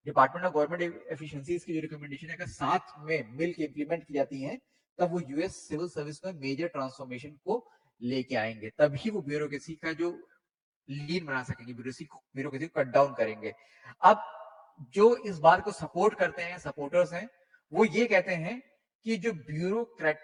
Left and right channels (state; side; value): identical; both; correlation 1.00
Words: डिपार्टमेंट ऑफ गवर्नमेंट एफिशिएंसीज की जो रिकमेंडेशन है अगर साथ में मिल के इंप्लीमेंट की जाती है, तब वो यूएस सिविल सर्विस में मेजर ट्रांसफॉर्मेशन को लेके आएंगे। तभी वो ब्यूरोक्रेसी का जो लीन बना सकेंगे, ब्यूरोक्रेसी को कट डाउन करेंगे। अब जो इस बात को सपोर्ट करते हैं, सपोर्टर्स हैं, वो ये कहते हैं कि जो